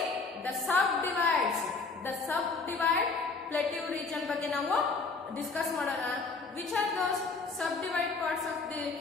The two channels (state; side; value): quieter; right; 4.2 dB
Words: the sub divides. The sub divide plateau region ಬಗ್ಗೆ ನಾವು ಡಿಸ್ಕಸ್ ಮಾಡೋಣ. Which are those sub divide parts of the